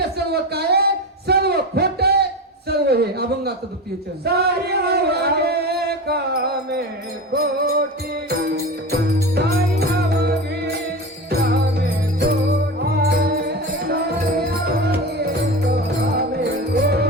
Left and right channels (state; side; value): normal; both; correlation 0.26